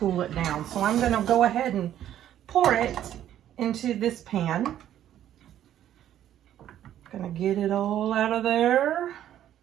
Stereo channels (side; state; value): left; quieter; 11.4 dB